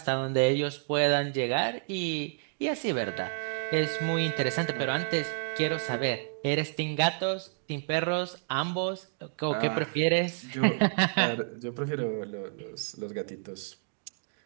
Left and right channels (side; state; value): left; silent; digital silence